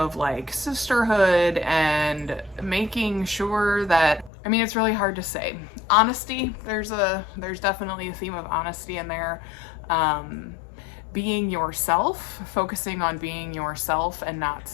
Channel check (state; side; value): drops out; right; at 4.3 s